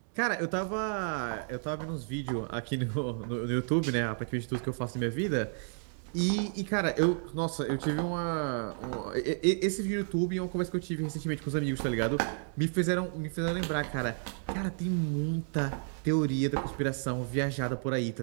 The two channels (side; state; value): left; silent; 57 dB below the other